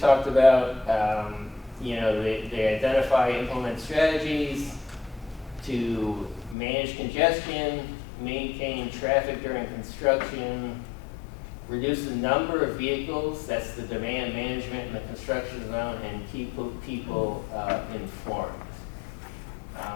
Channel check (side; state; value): right; drops out; at 6.6 s